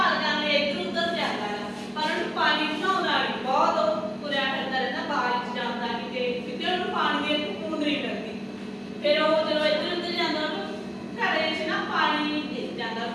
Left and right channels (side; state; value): both; identical; correlation 1.00